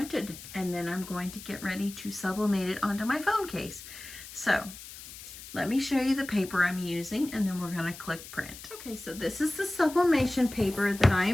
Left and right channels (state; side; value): noise; left; hiss, 14 dB below the sound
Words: and then I'm going to get ready to sublimate it onto my phone case. So let me show you the paper I'm using and then we're going to click print. Okay, so this is the sublimation paper that I